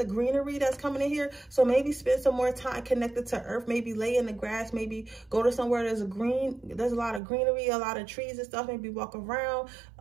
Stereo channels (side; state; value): left; drops out; at 7.2 s